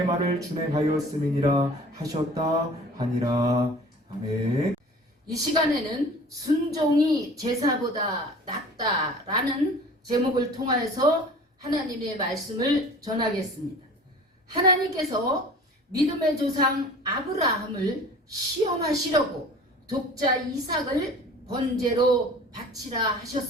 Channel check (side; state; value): both; normal; correlation 0.43